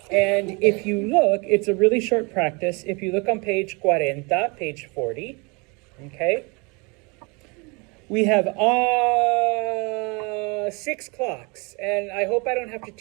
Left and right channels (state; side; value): quieter; left; 29.6 dB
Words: And if you look, it's a really short practice. If you look on page 40, page 40, okay, we have 6 clocks. And I hope I don't have to